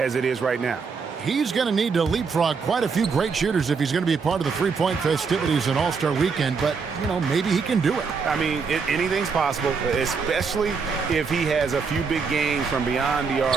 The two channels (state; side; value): quieter; left; 5.3 dB